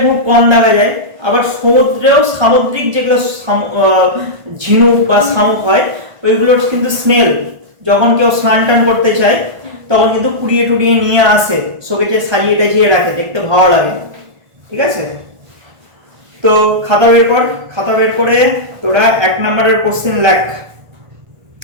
খুব কম দেখা যায়। আবার সমুদ্রেও সামুদ্রিক যেগুলো ঝিনুক বা শামুক হয়, ওইগুলোর কিন্তু স্নেল যখন কেউ স্নান টান করতে চায় তখন কিন্তু কুড়িয়ে টুড়িয়ে নিয়ে আসে, শোকেজে সাজিয়ে টাজিয়ে রাখে, দেখতে ভালো লাগে। ঠিক আছে, তো খাতা বের কর, খাতা বের করে তোরা 1 নম্বরের কোশ্চেন লেখ।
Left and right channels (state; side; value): late; left; 1.5 ms